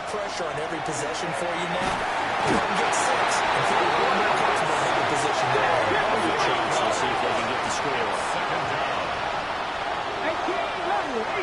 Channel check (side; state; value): both; identical; correlation 1.00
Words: pressure on every possession for you now. You can get 6 and feel a little more comfortable in the position there. Good chance to see if they can get the score. Second down. 18